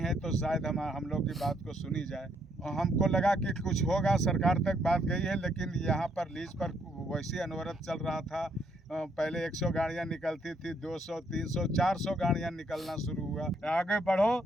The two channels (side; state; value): both; normal; correlation 0.71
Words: तो शायद हम लोग की बात को सुनी जाए। हमको लगा कि कुछ होगा, सरकार तक बात गई है, लेकिन यहाँ पर लीज पर वैसी अनवरत चल रहा था। पहले 100 गाड़ियाँ निकलती थी, 200, 300, 400 गाड़ियाँ निकलना शुरू हुआ। आगे बढ़ो,